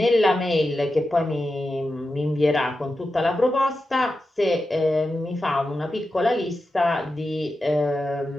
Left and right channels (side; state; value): both; normal; correlation 0.91